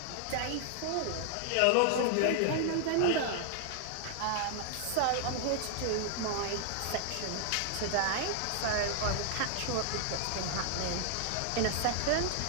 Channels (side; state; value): both; different; correlation 0.00